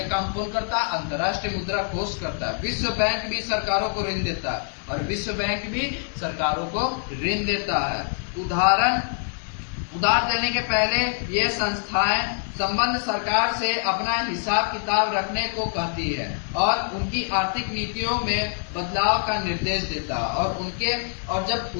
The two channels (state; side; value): silent; right; digital silence